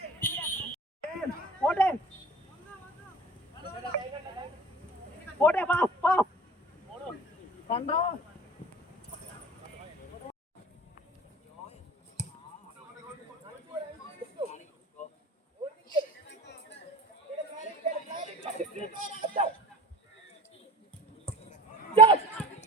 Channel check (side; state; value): both; normal; correlation 0.41